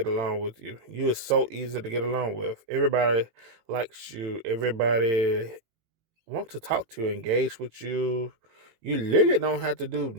along with you. You are so easy to get along with. Everybody likes you. Everybody wants to talk to you, engage with you. You literally don't have to do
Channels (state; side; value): late; left; 18 ms